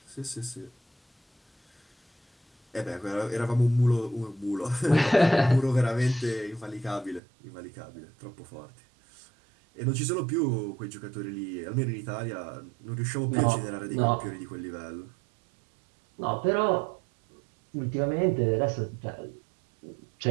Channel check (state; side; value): drops out; left; at 7.2 s